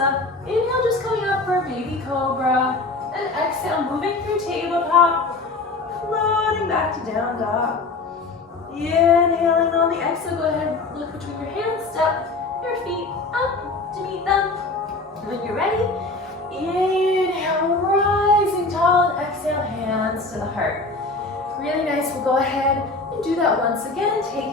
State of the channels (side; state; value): right; quieter; 3.4 dB